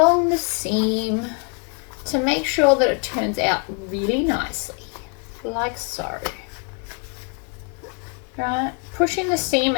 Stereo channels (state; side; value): quieter; right; 37.2 dB